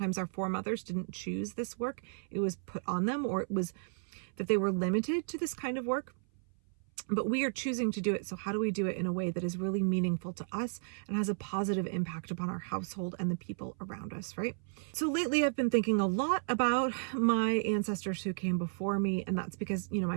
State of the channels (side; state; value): left; silent; 55 dB below the other